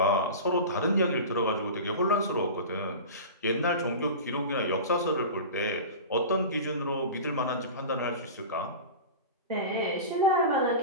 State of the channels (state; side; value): inverted; both; correlation -0.31